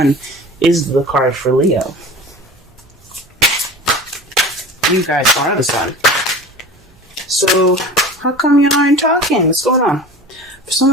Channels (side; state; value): both; normal; correlation 0.37